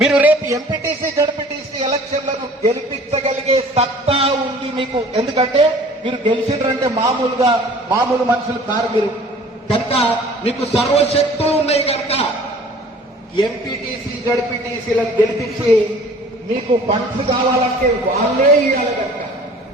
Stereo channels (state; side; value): normal; both; correlation 0.49